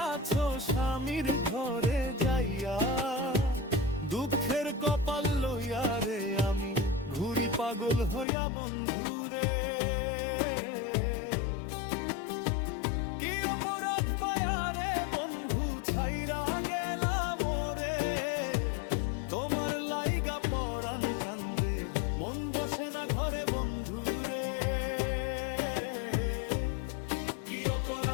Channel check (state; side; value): drops out; right; at 8.2 s